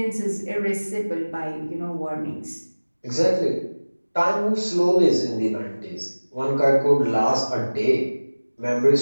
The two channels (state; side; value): inverted; both; correlation -1.00